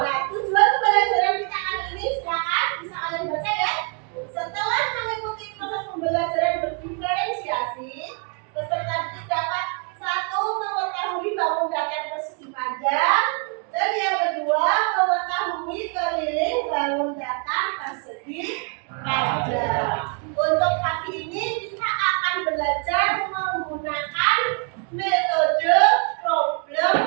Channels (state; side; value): quieter; left; 39.7 dB